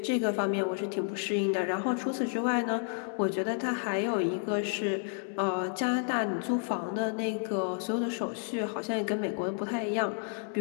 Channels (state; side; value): silent; right; 57 dB below the other